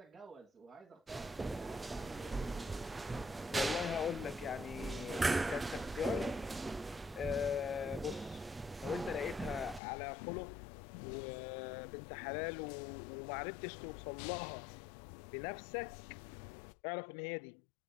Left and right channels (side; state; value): right; drops out; at 9.8 s